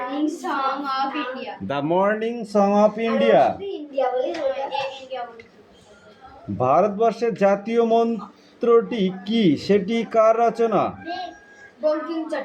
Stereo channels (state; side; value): identical; both; correlation 1.00